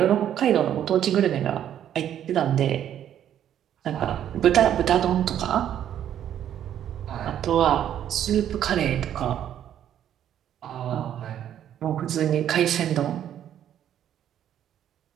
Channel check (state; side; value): quieter; left; 10.4 dB